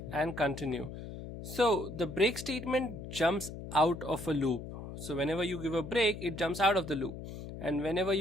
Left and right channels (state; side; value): noise; left; hum, 10 dB below the sound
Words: and continue. So the break statement jumps out of a loop. So whenever you give a break, it jumps out of the loop. And whenever